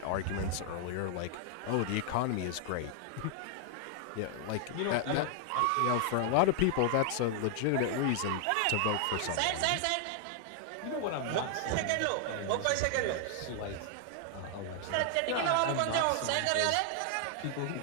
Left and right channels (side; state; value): both; different; correlation 0.00